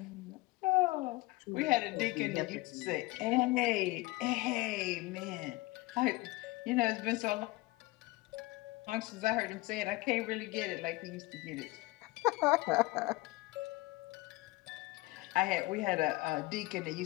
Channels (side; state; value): right; quieter; 21.2 dB